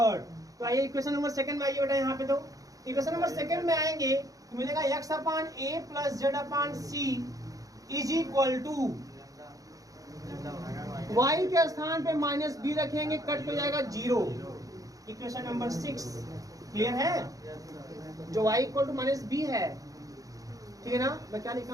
तो आइए इक्वेशन नंबर सेकेंड में आइए बेटा। यहाँ पे तो इक्वेशन नंबर सेकेंड में आएंगे तो मिलेगा x upon a plus z upon c is equal to y के स्थान पे माइनस b रखेंगे, कट हो जाएगा 0। इक्वेशन नंबर 6 क्लियर है, जो y equal to minus b है, ठीक है ना। मैं क्या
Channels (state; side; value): late; left; 0.17 ms